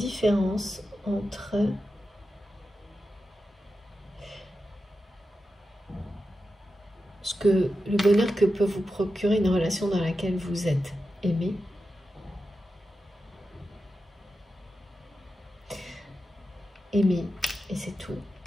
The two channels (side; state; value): both; normal; correlation 0.90